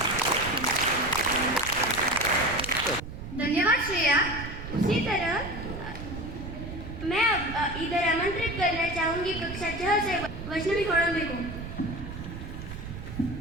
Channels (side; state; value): right; noise; rumble, 9 dB below the sound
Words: धन्यवाद श्रेया। उसी तरह मैं इधर आमंत्रित करना चाहूंगी कक्षा 6 से वैष्णवी कोड़म्बे को।